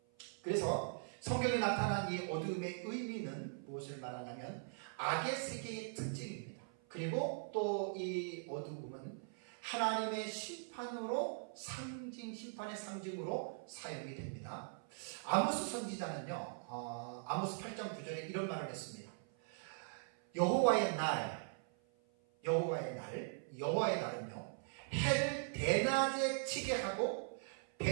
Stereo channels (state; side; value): silent; left; 50 dB below the other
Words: 그래서 성경에 나타난 이 어둠의 의미는 무엇을 말하냐면 악의 세계의 특징입니다. 그리고 또 이 어둠은 하나님의 심판으로 심판의 상징으로 사용이 됩니다. 아모스 선지자는요, 아모스 8장 9절에 이런 말을 했습니다. 여호와의 날은요, 해를 대낮에 치게 하고